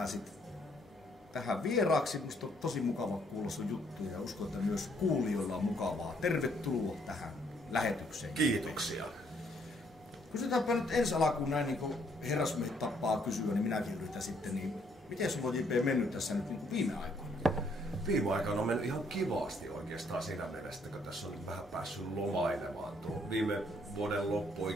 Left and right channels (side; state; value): both; normal; correlation 0.68